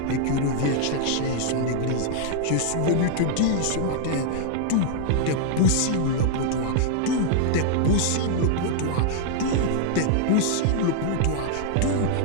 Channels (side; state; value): both; different; correlation 0.00